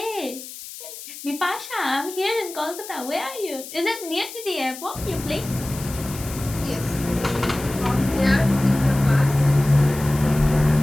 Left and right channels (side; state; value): left; noise; hiss, 13 dB below the sound